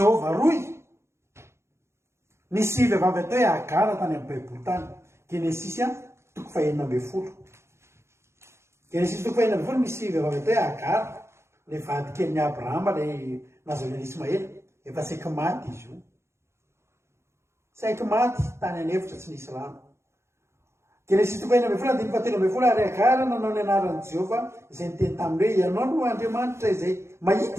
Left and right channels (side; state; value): left; late; 0.13 ms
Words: roy. Nisy vehivavy atao hoe Agara tany amin'ny baiboly tany. Genesis toko fa 9. Genesis toko fa 9 misy vehivavy atao hoe Agara. Le vady kelin'ny Abrahama le nazon'ny Ismaely. Efa saiky maty izy io. Saiky maty tany anefitra tsy nisy rano. Genesis toko 9 andiny fa 13 ary Agara nanao ny anaran'i Jehova izay niteny taminy hoe ianao no Andriamanitra izay